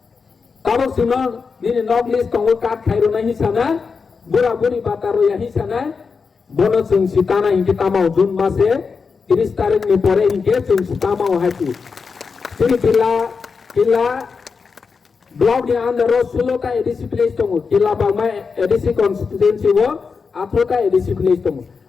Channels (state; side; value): quieter; right; 5.2 dB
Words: काबक सुनो दिने नॉक लिस्ट तंगो काट खाइरो नहीं साना बुरा बुरी बातारो यही साना बोनो जों सिताना इनके तामाव जून मासे 30 तारिख में परे इनके जों सितामाव हाइति जोंनि किला ब्लॉक नि अंदर 16 ता एडीसी विलेज दङ किला बागमा एडीसी कन्स्टिट्युएन्सी वो 18 ता एडीसी विलेज दङ